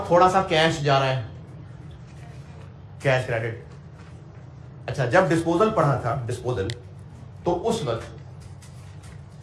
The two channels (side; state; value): both; identical; correlation 1.00